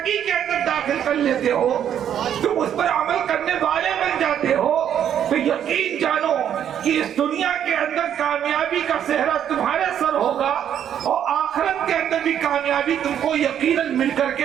کے اندر داخل کر لیتے ہو، تم اس پر عمل کرنے والے بن جاتے ہو، تو یقین جانو کہ اس دنیا کے اندر کامیابی کا صحرا تمہارے سر ہوگا، اور آخرت کے اندر بھی کامیابی تم کو یقیناً مل کر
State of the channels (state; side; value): quieter; left; 9.6 dB